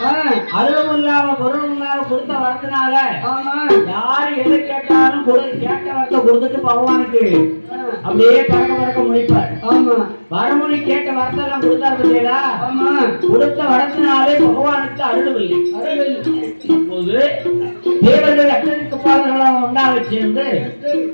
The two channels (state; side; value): inverted; both; correlation -1.00